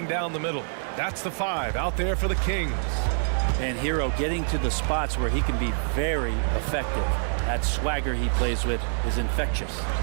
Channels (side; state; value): left; silent; digital silence